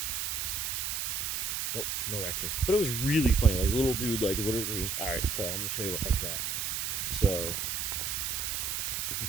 Nope, no raccoon. But it was really funny. Like, little dude, like, literally. Alright, so I'm going to show you where I was at. So, if you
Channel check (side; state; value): right; noise; hiss, 1 dB below the sound